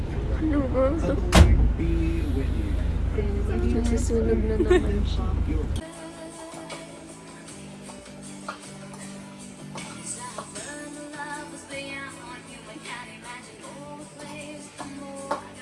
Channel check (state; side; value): identical; both; correlation 1.00